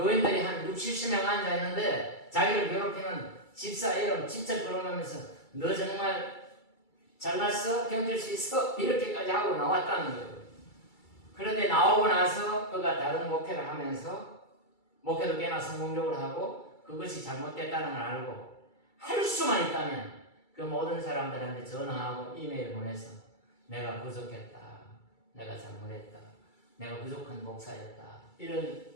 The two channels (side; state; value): right; late; 2.3 ms